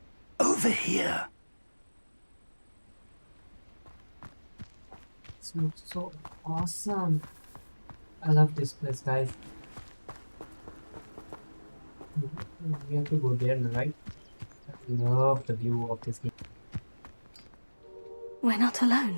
Over here. This looks so awesome. I love this place, guys. We have to go there, right? I love the view of this game. We're not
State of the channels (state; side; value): inverted; both; correlation -1.00